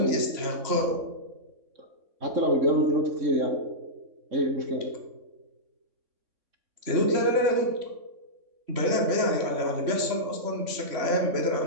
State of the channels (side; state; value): left; late; 3.6 ms